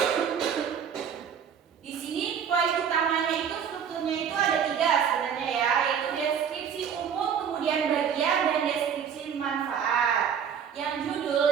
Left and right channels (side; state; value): left; quieter; 7.8 dB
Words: Di sini poin utamanya itu strukturnya itu ada 3 sebenarnya ya, yaitu deskripsi umum, kemudian bagian, dan deskripsi manfaat. Yang judul